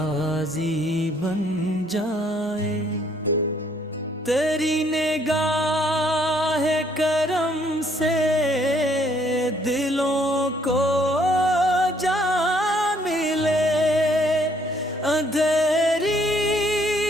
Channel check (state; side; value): normal; both; correlation 0.66